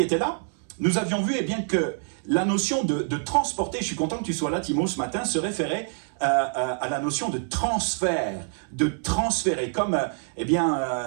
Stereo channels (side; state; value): left; silent; digital silence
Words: étaient là, nous avions vu que la notion de transporter, je suis content que tu sois là Timo ce matin, se référait à la notion de transfert, de transférer, comme